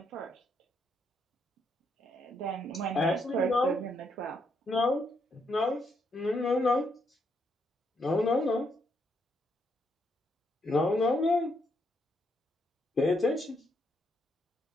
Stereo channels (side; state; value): both; normal; correlation 0.76